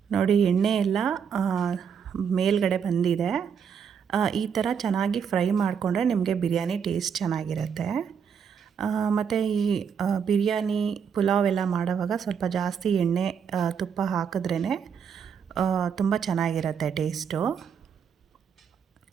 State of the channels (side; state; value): left; quieter; 7.1 dB